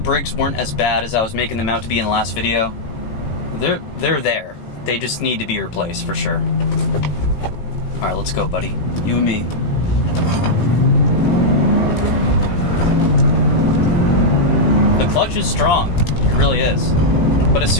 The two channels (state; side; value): late; right; 18 ms